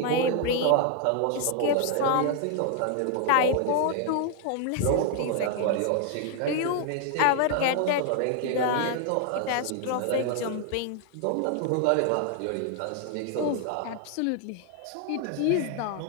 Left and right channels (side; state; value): both; different; correlation 0.00